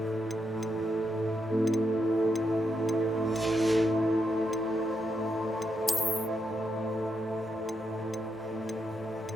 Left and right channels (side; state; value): both; normal; correlation 0.82